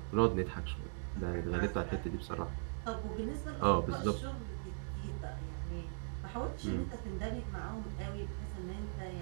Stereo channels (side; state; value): left; silent; digital silence